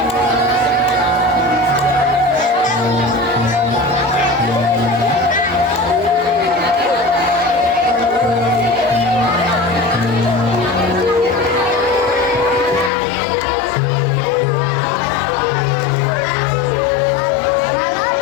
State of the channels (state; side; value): drops out; right; at 12.9 s